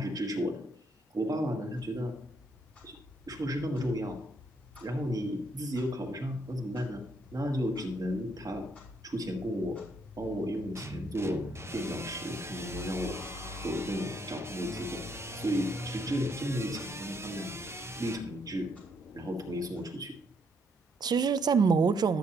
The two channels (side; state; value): both; normal; correlation 0.73